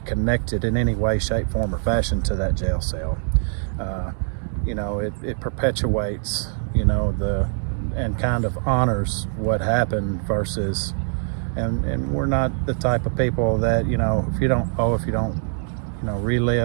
connected in any way, shape, form, or fashion to that jail cell. You know, it perpetuates, you know, and kind of honors what happened versus, and we're not the type of people that, you know, if you don't you know,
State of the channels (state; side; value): silent; left; digital silence